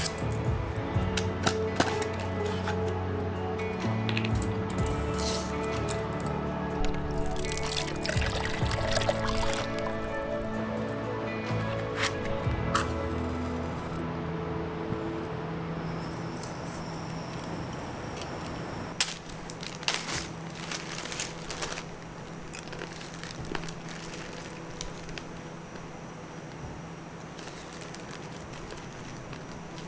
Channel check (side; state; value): both; identical; correlation 1.00